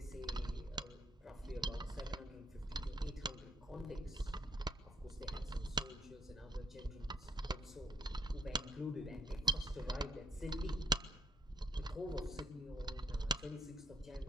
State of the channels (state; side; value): normal; both; correlation 0.68